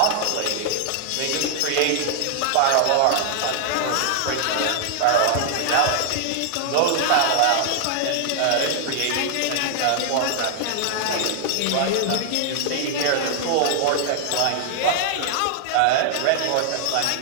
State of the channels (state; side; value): different; both; correlation 0.00